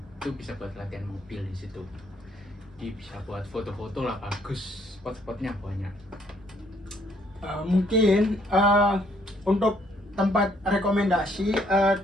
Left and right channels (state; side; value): normal; both; correlation 0.67